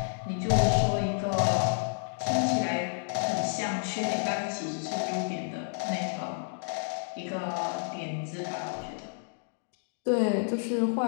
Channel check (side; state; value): right; silent; digital silence